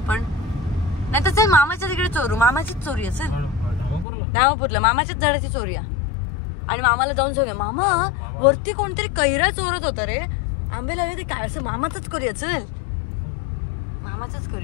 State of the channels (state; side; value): drops out; right; at 4.0 s